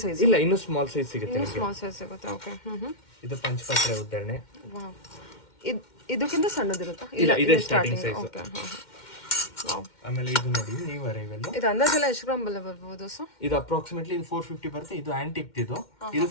ಸೈಜ್. ಇಲ್ಲ, ಇನ್ನು ಸ್ಮಾಲ್ ಸೈಜ್ ಸಿಗುತ್ತೆ. ಸ್ಮಾಲ್ ಸೈಜ್ ಸಿಗುತ್ತೆ. ಓಕೆ. ಇದು ಪಂಚಪಾತ್ರೆ ಉದ್ದರಣೆ. ವಾವ್, ಇದಕ್ಕಿಂತ ಸಣ್ಣದಿರುತ್ತಾ? ಇಲ್ಲ, ಇದೇ ಸ್ಟಾರ್ಟಿಂಗ್ ಸೈಜ್. ಓಕೆ. ಆಮೇಲೆ ಇದು ನೋಡಿ, ನೀವು ಅರೈವಲ್. ಇದು ಅಂದಾಜೆಲ್ಲ ಎಷ್ಟು ಗ್ರಾಮ್ ಬರ್ಬೋದು ಸರ್? ಇದು ಅಪ್ರಾಕ್ಸಿಮೇಟ್ಲಿ ಇದು 450 ಬರುತ್ತೆ. ಇದು ಆಂಟಿಕ್. ಇದು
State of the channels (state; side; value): late; right; 2.1 ms